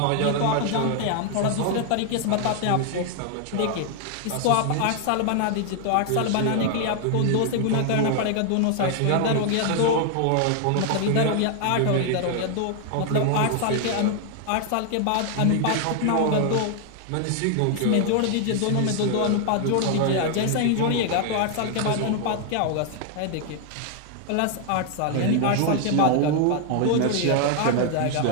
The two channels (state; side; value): different; both; correlation 0.00